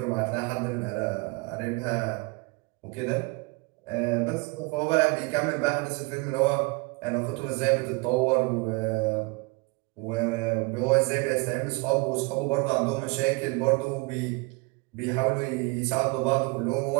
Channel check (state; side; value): quieter; left; 27.5 dB